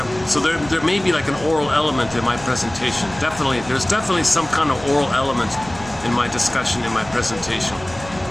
So there may be like an oral element in my presentation. There's definitely some kind of oral element in my discussion, in my presentation.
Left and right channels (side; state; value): right; noise; rumble, 17 dB below the sound